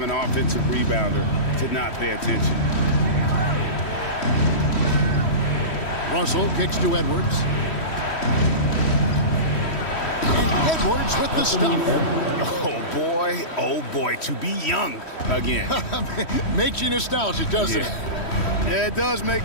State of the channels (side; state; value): right; late; 3.1 ms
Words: an offensive rebounder to not pay attention. Russell kicks to Edwards. And Edwards with the stuff. Oh boy, to be young again. Makes you nostalgic, doesn't it? Yeah, it does make